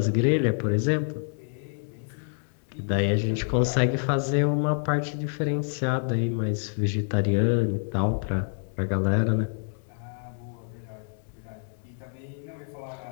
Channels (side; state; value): right; silent; 60 dB below the other